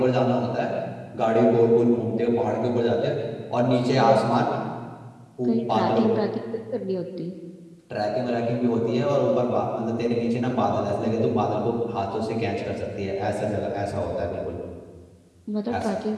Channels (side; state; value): both; identical; correlation 1.00